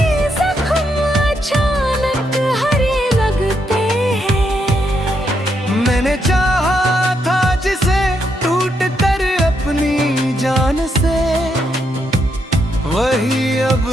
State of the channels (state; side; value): normal; both; correlation 0.79